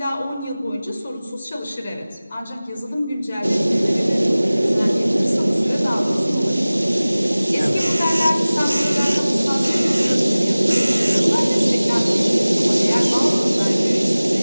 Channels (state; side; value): inverted; both; correlation -0.98